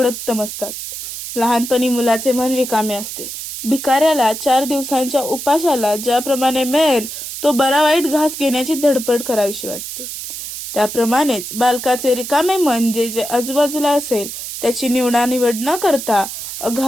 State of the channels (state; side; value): noise; right; hiss, 8 dB below the sound